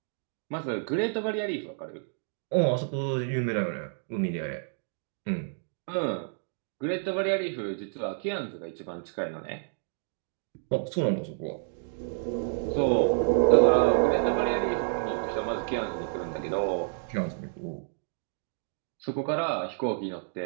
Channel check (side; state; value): left; silent; digital silence